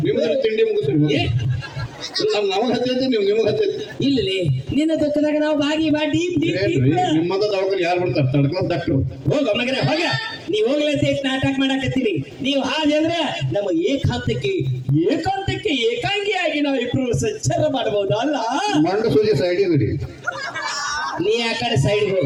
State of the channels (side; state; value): both; identical; correlation 1.00